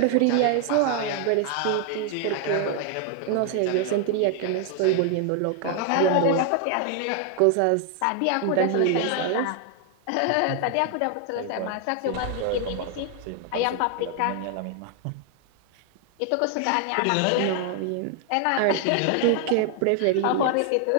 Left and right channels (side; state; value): both; different; correlation 0.00